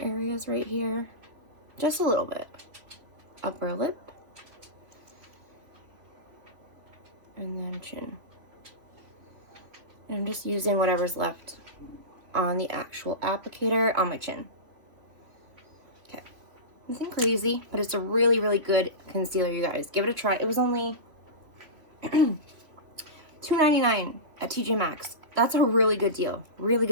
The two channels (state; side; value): late; left; 3.0 ms